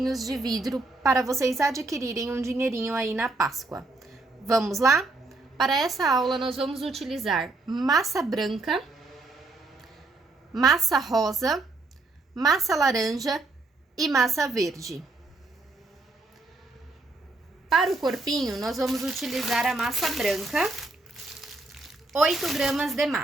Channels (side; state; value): left; quieter; 3.2 dB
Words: de vidro para vocês adquirirem um dinheirinho aí na Páscoa. Vamos lá? Para essa aula, nós vamos utilizar massa branca, massa rosa, massa laranja e massa verde. Para o corpinho, nós vamos utilizar a massa branca, 8 gramas de